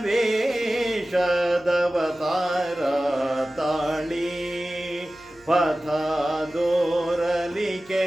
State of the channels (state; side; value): noise; left; hum, 29 dB below the sound